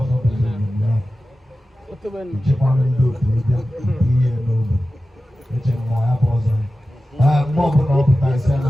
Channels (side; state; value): both; normal; correlation 0.94